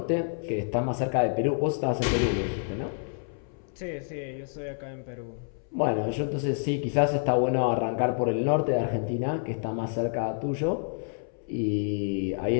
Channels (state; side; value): silent; right; 59 dB below the other